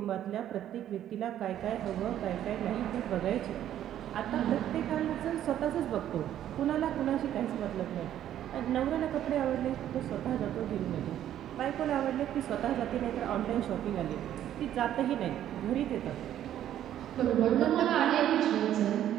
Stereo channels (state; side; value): quieter; left; 11.4 dB